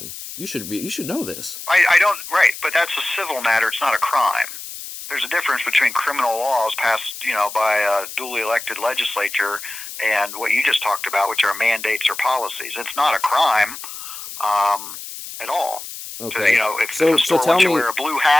You should know this. I don't, right, but that's a civil matter. It's not a crime. There's a difference between criminal laws passed, by a duly elected legislature and what you just talked about, which are mandates or policies. It's not a crime at all. Okay. If the store wants you to wear a blue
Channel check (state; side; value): noise; left; hiss, 11 dB below the sound